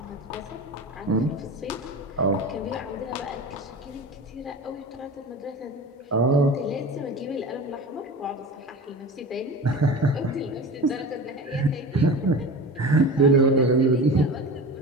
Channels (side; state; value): both; normal; correlation 0.32